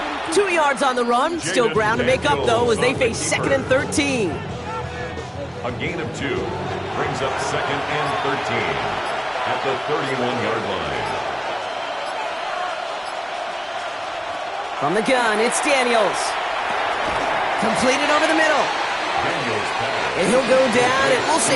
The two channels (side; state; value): both; identical; correlation 1.00